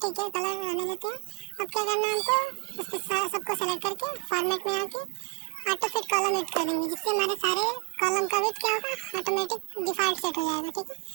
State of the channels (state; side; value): quieter; left; 34.4 dB